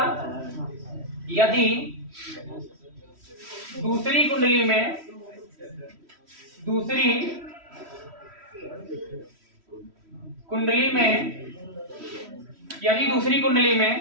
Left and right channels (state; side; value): late; left; 3.1 ms